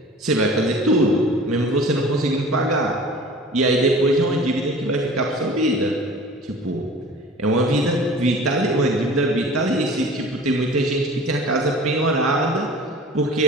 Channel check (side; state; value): both; normal; correlation 0.43